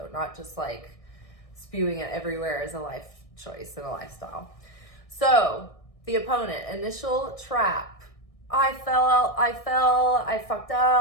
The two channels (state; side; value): late; right; 1.6 ms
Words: not just like spewing it everywhere as a life choice and a lifestyle. So the opponent, initial trap. I fucked